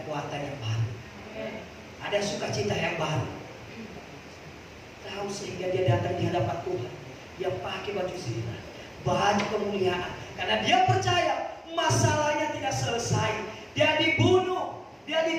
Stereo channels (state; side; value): identical; both; correlation 1.00